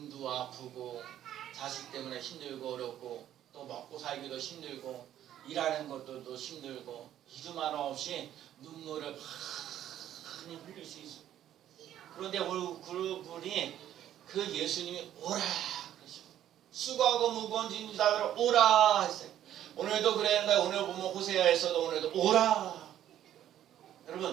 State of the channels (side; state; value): left; quieter; 11.5 dB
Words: 아프고 자식 때문에 힘들고 어렵고 또 먹고 살기도 힘들고 일하는 것도 또 힘들고 이름 하나 없이 눈물을 많이 흘릴 수 있어요. 그런데 그분이 그 예수님이 오라 그러시고 수고하고 무거운 짐진 자들아 오라 했어요. 오늘도 그랬는데 오늘 보면 호세아에서도 오늘도 오라.